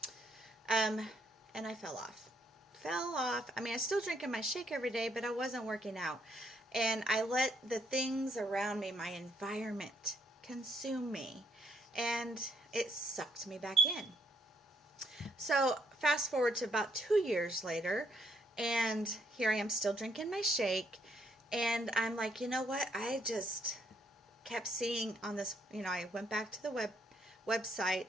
And I fell off. I mean, I still drinking my shake every day, but I wasn't working out. And I let the things around me, my environment, consume me, and it sucked me back in. So fast forward to about 2 years later, and here I am still drinking my shake, and I'm like, you know what, I just kept seeing on this, I went back to the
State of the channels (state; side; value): normal; both; correlation 0.71